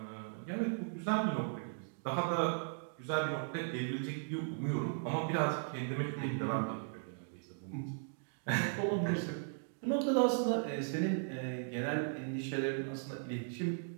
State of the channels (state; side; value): silent; left; digital silence